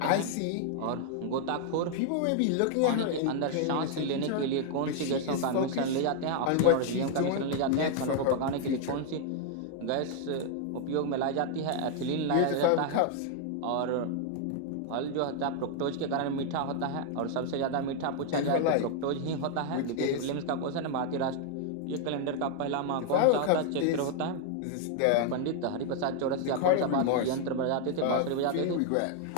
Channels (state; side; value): different; both; correlation 0.00